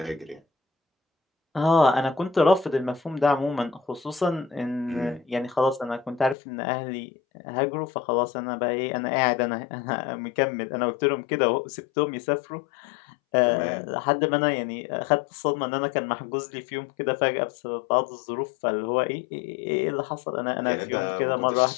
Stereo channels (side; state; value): right; drops out; at 6.4 s